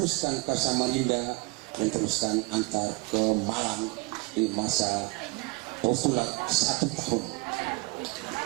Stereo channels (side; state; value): left; quieter; 26.4 dB